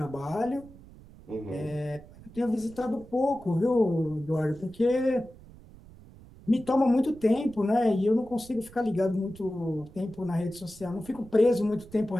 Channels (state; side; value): noise; right; rumble, 21 dB below the sound